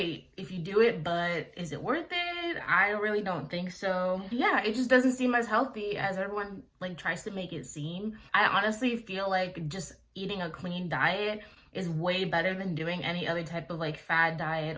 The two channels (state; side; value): identical; both; correlation 1.00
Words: if you do it, but is it worth it? I really don't think so. Yeah, it just doesn't seem as healthy as everyone like tries to make it seem. I honestly feel like just eating a clean diet is way better than doing any other type of like fad diet